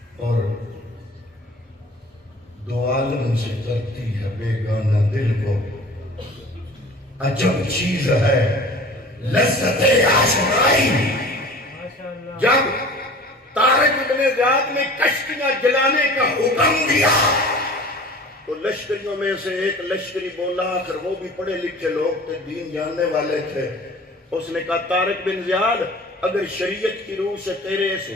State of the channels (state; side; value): normal; both; correlation 0.43